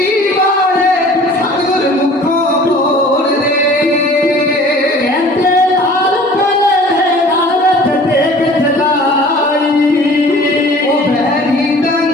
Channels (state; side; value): normal; both; correlation 0.47